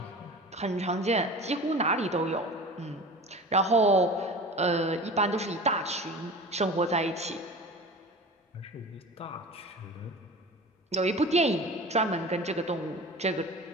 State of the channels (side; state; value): both; normal; correlation 0.36